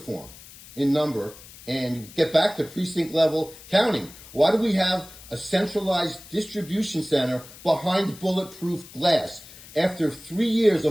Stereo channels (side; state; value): left; noise; hiss, 19 dB below the sound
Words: in number and get back to precinct level counting. Why do we have a centralized distribution center behind bulletproof glass? After 3 years